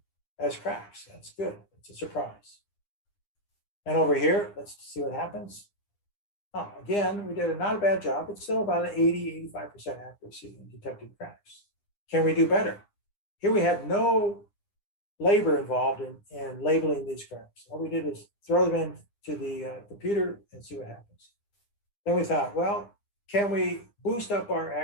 as cracks. That's good. It's a surprise. And over here, let's see what happens. Oh, again, we did not a bad job. It's still about an 80, 85% accuracy in detecting cracks. Can we do better? Here we had no labor involved in labeling these cracks. All we did is throw them into the computer and see what happens. Then we thought, well, can we boost up our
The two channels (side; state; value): right; late; 9.8 ms